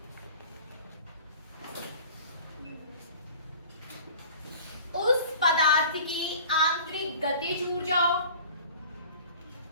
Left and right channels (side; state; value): both; inverted; correlation -0.44